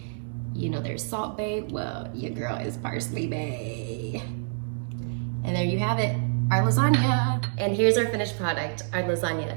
You know there's Salt Bae, well, your girl is Parsley Bae. And there you have it, our lasagna. And here's our finished product, our lasagna.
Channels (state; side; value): silent; left; digital silence